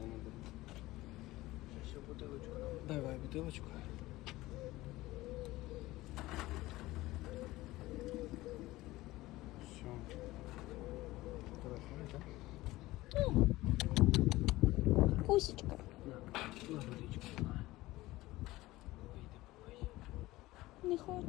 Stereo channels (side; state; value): right; quieter; 18.3 dB